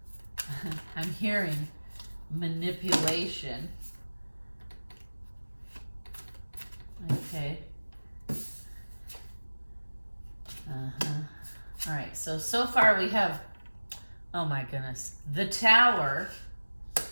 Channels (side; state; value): both; inverted; correlation -1.00